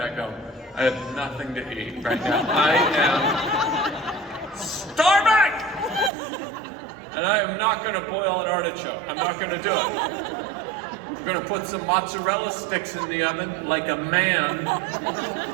I go, I have nothing to eat right now. I am starving! And I am not gonna boil an artichoke. I'm not gonna do it. I'm gonna put some mozzarella sticks in the oven like a man,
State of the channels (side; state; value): left; drops out; at 6.1 s